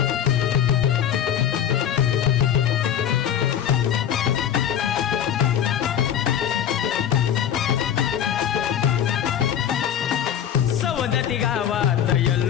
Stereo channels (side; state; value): right; quieter; 9.6 dB